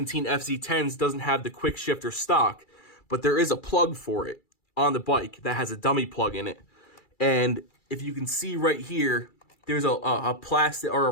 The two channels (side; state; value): right; late; 2.3 ms